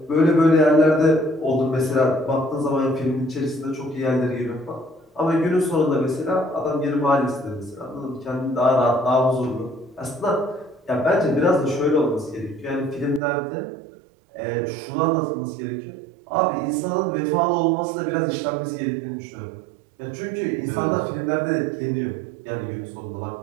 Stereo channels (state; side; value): drops out; left; at 13.2 s